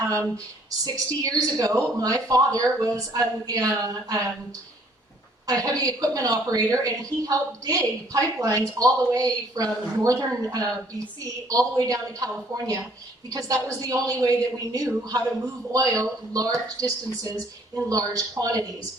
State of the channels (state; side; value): normal; both; correlation 0.61